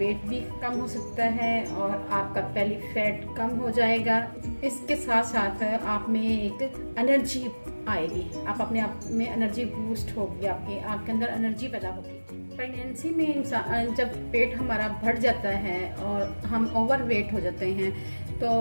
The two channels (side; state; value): both; inverted; correlation -1.00